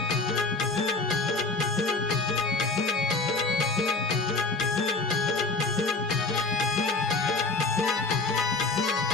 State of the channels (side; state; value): right; quieter; 3.6 dB